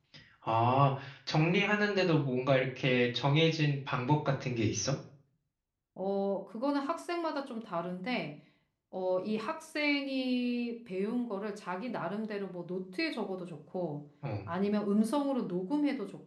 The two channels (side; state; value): both; identical; correlation 1.00